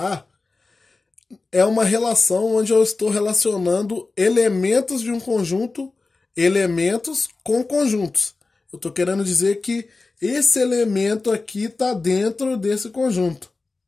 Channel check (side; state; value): right; quieter; 3.7 dB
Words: A, é uma relação onde eu estou relacionando elementos de um conjunto, elementos com conjuntos. Eu estou querendo dizer que esse elemento aqui está dentro desse conjunto.